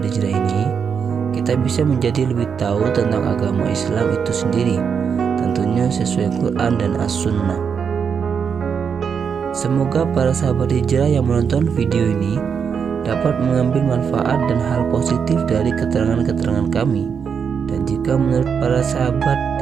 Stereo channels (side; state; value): left; quieter; 6.7 dB